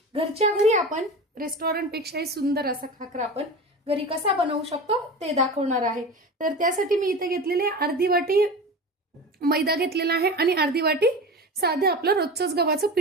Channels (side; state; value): both; normal; correlation 0.30